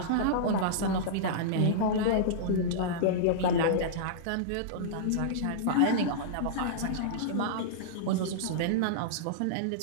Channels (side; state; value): both; different; correlation -0.03